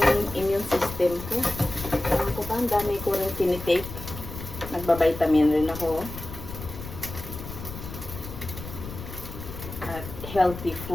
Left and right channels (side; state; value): left; noise; rumble, 10 dB below the sound